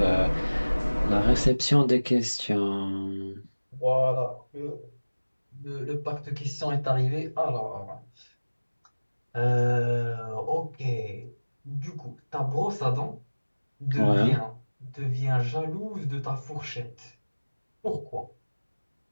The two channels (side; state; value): both; inverted; correlation -1.00